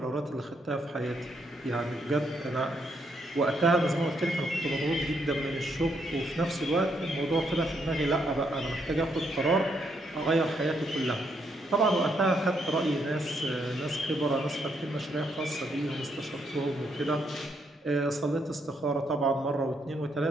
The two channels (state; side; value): normal; both; correlation 0.75